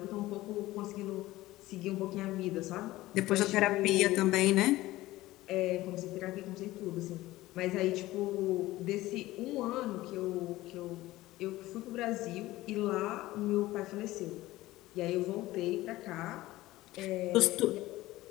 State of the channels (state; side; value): quieter; right; 17.4 dB